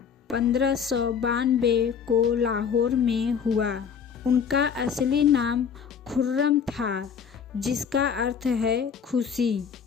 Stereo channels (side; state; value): right; quieter; 7.0 dB